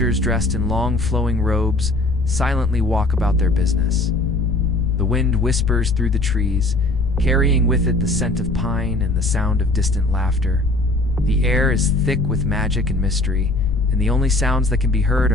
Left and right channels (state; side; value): noise; left; rumble, 5 dB below the sound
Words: dressed in long flowing robes silently walk about their business. The wind whispers through the trees, carrying with it the scent of pine and the sound of distant laughter. The air is thick with magic and mystery, and the only sounds that can be heard